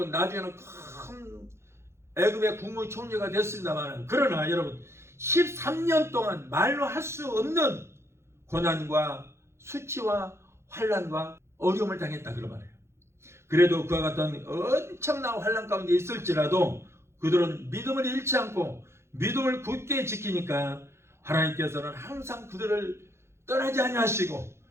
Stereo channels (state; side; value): late; left; 0.13 ms